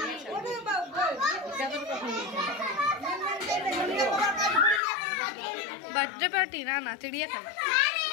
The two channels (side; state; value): right; drops out; at 4.8 s